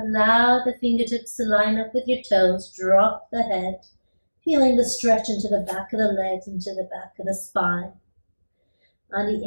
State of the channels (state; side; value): inverted; both; correlation -1.00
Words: the fingertips to line up with your toes. Drop the head, feeling the stretch into the back of the legs, into the back of the spine. On